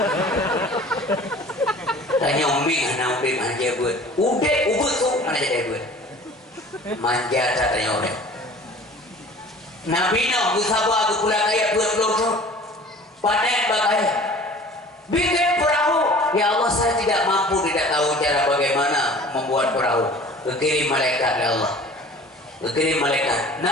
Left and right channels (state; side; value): normal; both; correlation 0.45